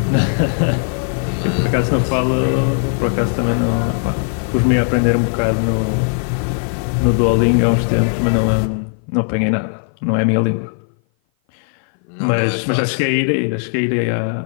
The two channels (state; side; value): silent; right; 57 dB below the other